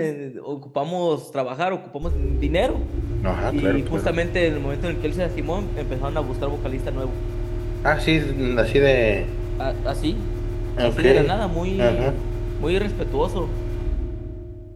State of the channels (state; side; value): identical; both; correlation 1.00